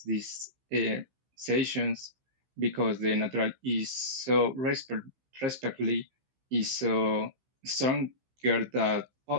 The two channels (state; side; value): late; left; 15 ms